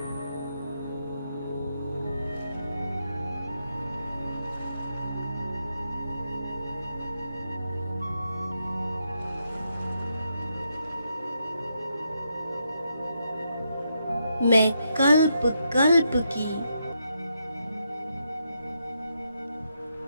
मैं कल्प कल्प की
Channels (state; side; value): inverted; both; correlation -0.81